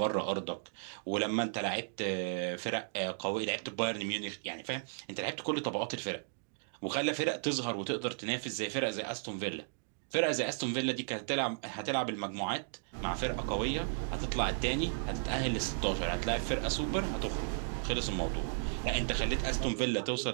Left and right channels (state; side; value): silent; left; digital silence